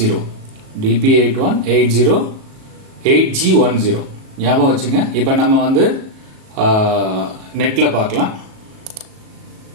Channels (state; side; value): late; left; 37 ms